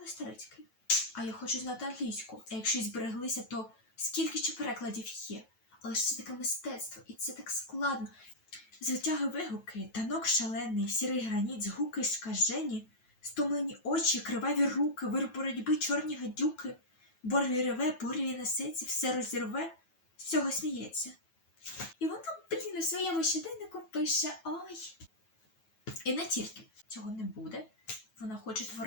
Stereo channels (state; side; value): late; right; 9.2 ms